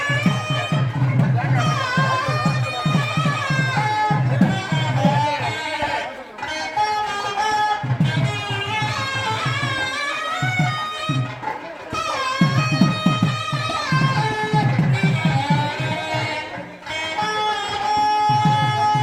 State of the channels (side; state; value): both; identical; correlation 1.00